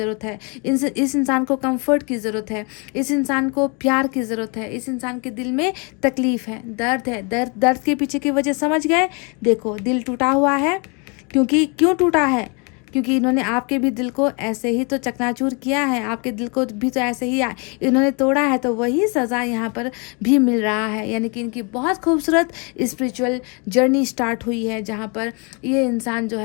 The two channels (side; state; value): right; quieter; 32.9 dB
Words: है, इस इंसान को कम्फर्ट की ज़रूरत है, इस इंसान को प्यार की ज़रूरत है, इस इंसान के दिल में तकलीफ़ है, दर्द है। दर्द के पीछे की वजह समझ गए। देखो, दिल टूटा हुआ है, क्यों टूटा है, क्योंकि इन्होंने आपके भी दिल को ऐसे ही तो चकनाचूर किया है, आपके दिल को भी तो ऐसे ही इन्होंने तोड़ा है। तो वही सज़ा यहाँ पर भी मिल रहा है, यानी कि इनकी बहुत खूबसूरत स्पिरिचुअल जर्नी स्टार्ट हुई है, जहाँ पर ये इंसान जो